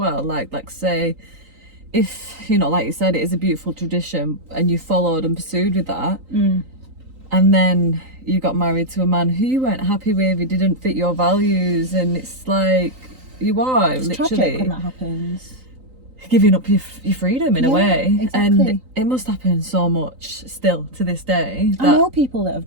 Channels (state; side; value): late; left; 3.8 ms